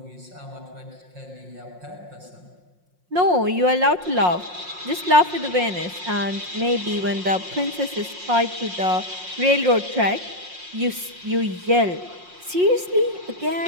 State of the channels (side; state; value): left; late; 5.6 ms